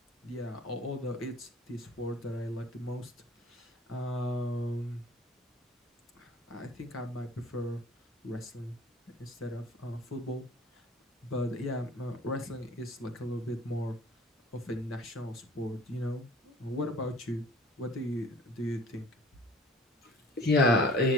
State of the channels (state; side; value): normal; both; correlation 0.49